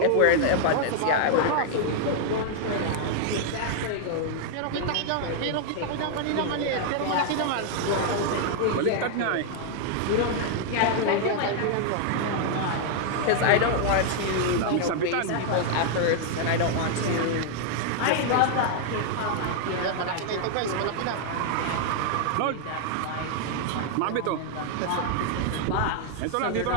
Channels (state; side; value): different; both; correlation 0.00